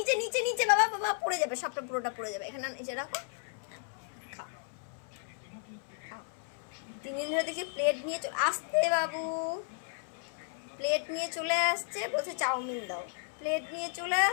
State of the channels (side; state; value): right; silent; 55 dB below the other